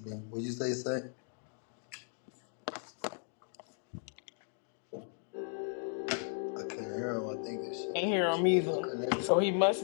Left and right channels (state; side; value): silent; right; 54 dB below the other